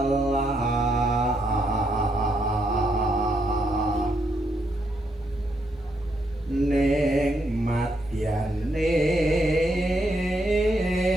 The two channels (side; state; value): both; normal; correlation 0.77